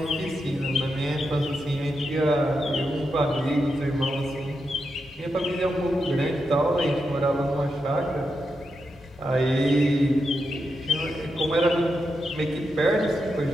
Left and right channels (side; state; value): both; normal; correlation 0.86